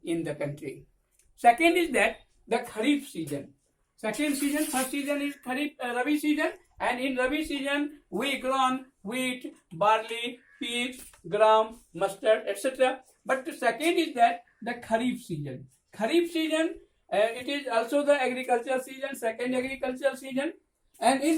in the country. Second is that the Kharif season. Second season, first season is Kharif Rabi season, and in Rabi season we grown wheat, barley, peas, gram, mustard, etc. But the second is that the Kharif season. Kharif season, it is also the agricultural season, second agricultural season, and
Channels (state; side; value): identical; both; correlation 1.00